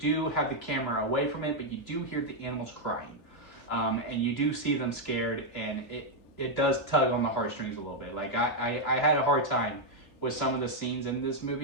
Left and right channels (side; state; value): right; late; 2.9 ms